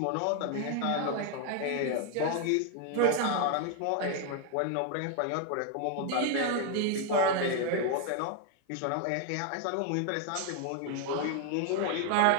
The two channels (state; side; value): different; both; correlation 0.00